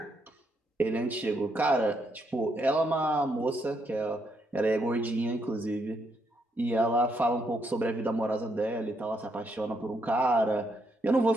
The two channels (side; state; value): both; normal; correlation 0.76